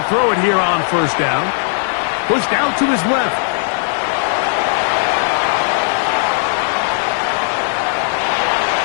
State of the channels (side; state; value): right; silent; digital silence